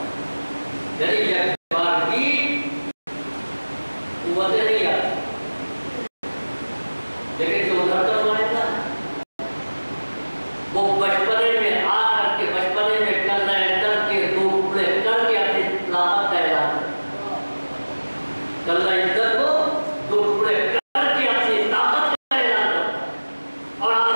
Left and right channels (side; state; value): both; inverted; correlation -1.00